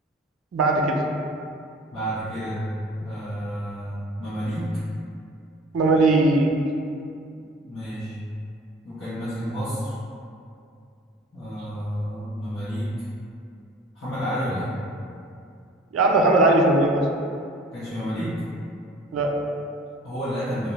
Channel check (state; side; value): normal; both; correlation 0.46